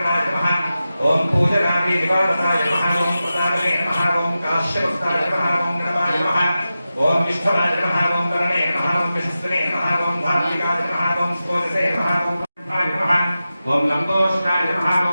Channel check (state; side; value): inverted; both; correlation -0.93